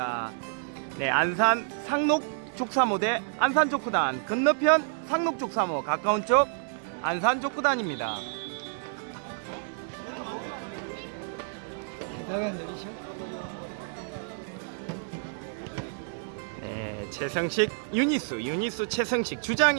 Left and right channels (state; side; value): silent; left; 58 dB below the other